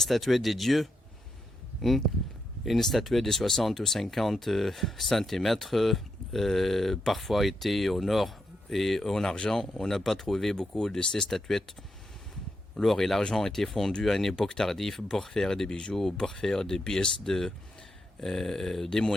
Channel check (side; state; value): both; normal; correlation 0.83